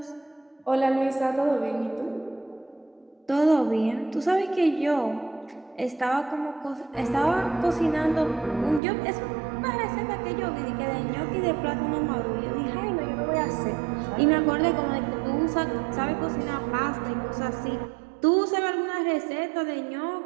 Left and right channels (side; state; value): left; drops out; at 8.8 s